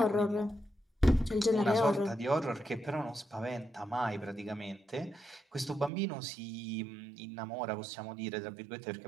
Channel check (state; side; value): drops out; left; at 5.9 s